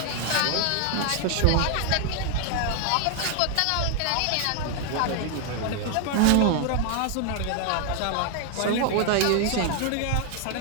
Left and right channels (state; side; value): different; both; correlation 0.00